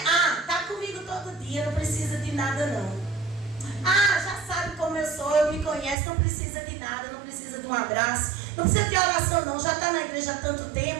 tá comigo todo dia, não precisa de nada não. Já sabe como eu sou, me conhece, não precisa de nada, não precisa de um abraço, não precisa de oração não, já está na igreja há tanto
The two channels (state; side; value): drops out; left; at 6.0 s